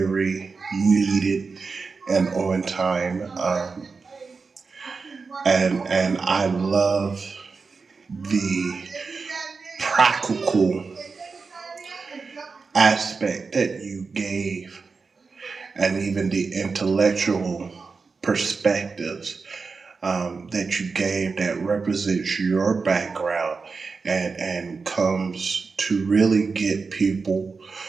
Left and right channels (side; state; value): left; quieter; 4.6 dB